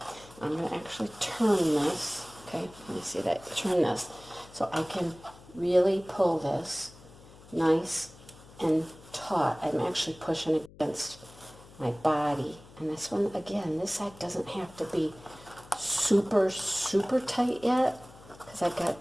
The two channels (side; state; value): left; noise; hum, 21 dB below the sound